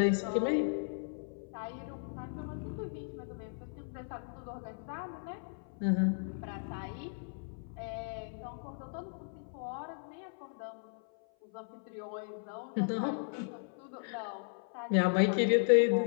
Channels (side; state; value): right; silent; 54 dB below the other